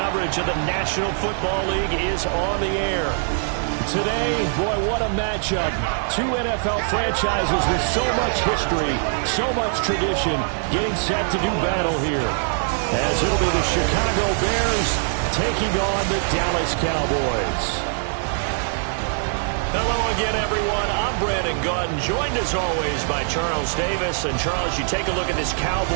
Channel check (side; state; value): left; silent; 63 dB below the other